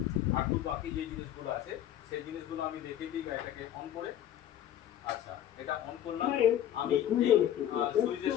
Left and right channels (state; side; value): quieter; right; 11.3 dB